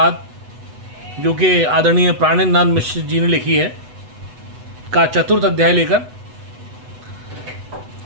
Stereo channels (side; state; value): left; late; 8.1 ms